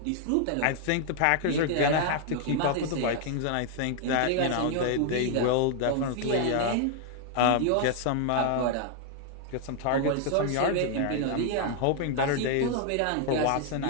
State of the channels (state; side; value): different; both; correlation 0.00